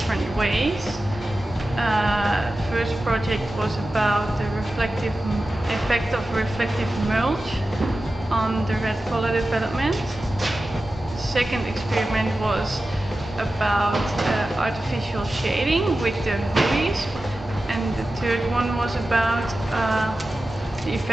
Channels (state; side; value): normal; both; correlation 0.94